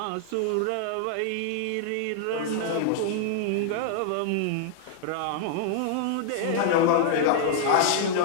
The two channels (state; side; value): different; both; correlation -0.01